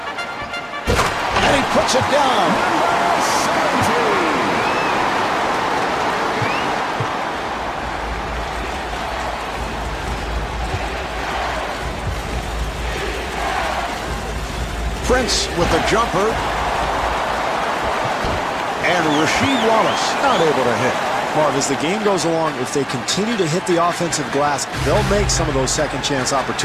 And he puts it down. Prince with the jumper. And Rasheed Wallace not able to hit. Marv, as the game goes along, if they continue to hit the offensive glass, they'll make some of those second chance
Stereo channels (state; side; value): identical; both; correlation 1.00